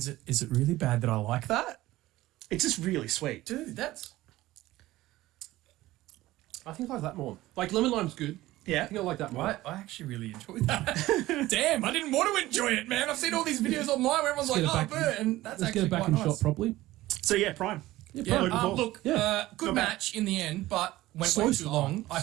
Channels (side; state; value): left; quieter; 16.9 dB